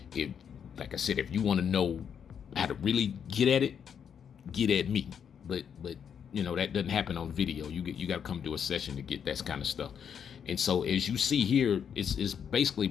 if you want to know how to really get at it, get at me. But that doesn't happen on video. You got to come to a session to get that kind of stuff. And so as you see here, it's basically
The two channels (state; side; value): quieter; right; 7.7 dB